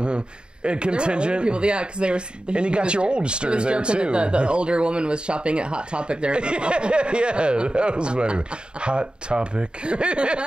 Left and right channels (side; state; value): left; late; 0.051 ms